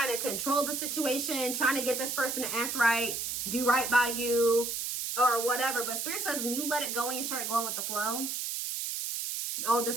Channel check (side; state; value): right; noise; hiss, 3 dB below the sound